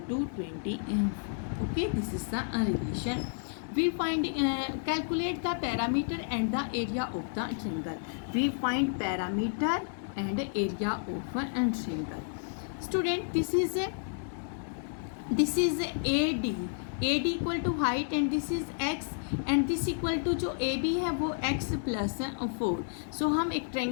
20. Okay, this is the relation. We find calculate the parameter and the area of the triangle. We find parameter and area of a triangle. Student, this is AD, AD equal to height, and this is x, and this equal to जो A B है वो x plus 4. सो हम एक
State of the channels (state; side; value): silent; right; digital silence